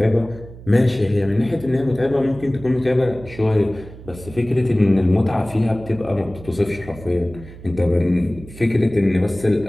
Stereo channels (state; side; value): noise; right; hum, 17 dB below the sound